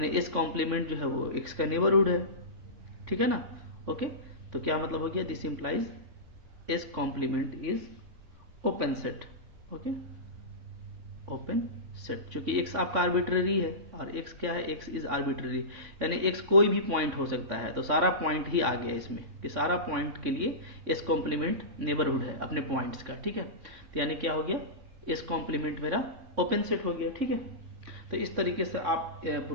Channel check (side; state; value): left; late; 3.6 ms